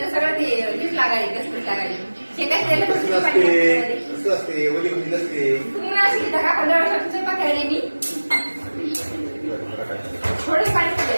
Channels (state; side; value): inverted; both; correlation -1.00